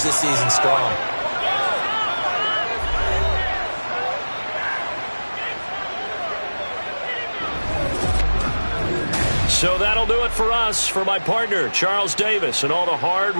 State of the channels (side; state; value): both; inverted; correlation -1.00